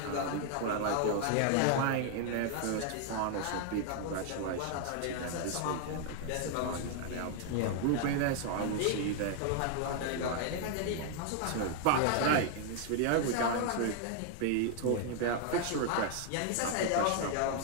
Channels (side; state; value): both; different; correlation 0.00